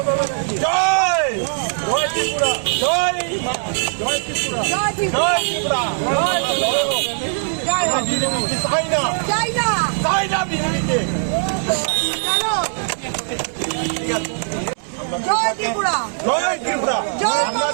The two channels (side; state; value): left; silent; digital silence